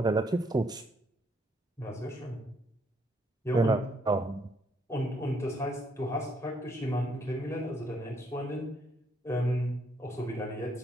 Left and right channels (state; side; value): normal; both; correlation 0.71